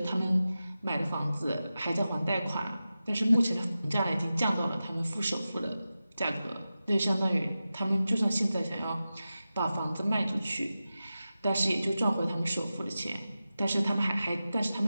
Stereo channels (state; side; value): inverted; both; correlation -0.93